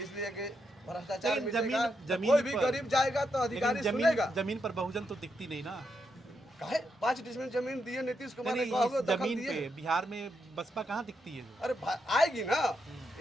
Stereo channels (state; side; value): normal; both; correlation 0.82